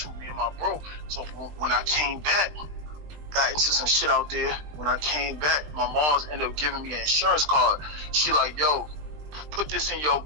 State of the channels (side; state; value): left; late; 20 ms